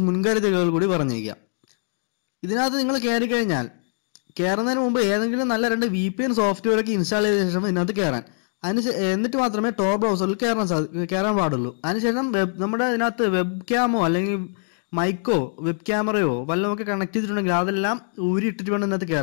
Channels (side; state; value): right; silent; digital silence